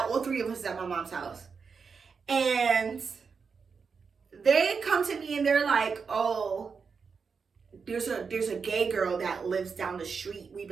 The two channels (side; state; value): left; quieter; 5.5 dB